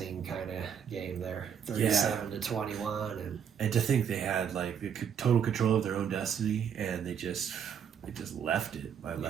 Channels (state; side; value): quieter; left; 8.0 dB